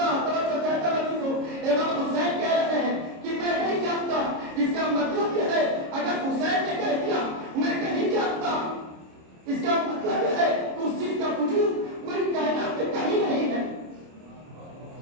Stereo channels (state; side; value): late; left; 26 ms